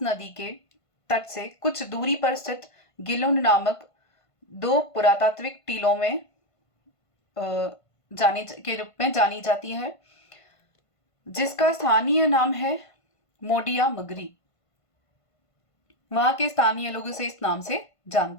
नदी के तट से कुछ दूरी पर स्थित गिलुंड नामक दो पुरातात्विक टीलों में के रूप में जानी जाती है, जिसका स्थानीय नाम है मोडिया मगरी। वहां के स्थानीय लोग इसे इस नाम से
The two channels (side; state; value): right; late; 1.5 ms